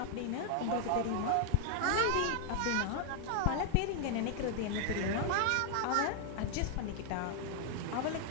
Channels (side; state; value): both; different; correlation 0.00